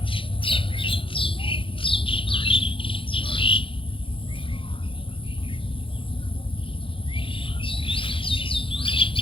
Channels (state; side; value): late; right; 0.25 ms